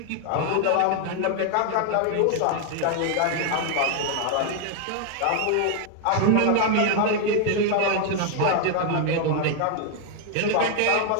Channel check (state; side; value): different; both; correlation 0.00